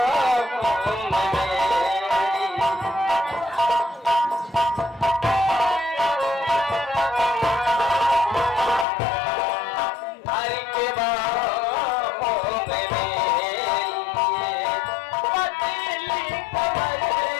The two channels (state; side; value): drops out; right; at 8.8 s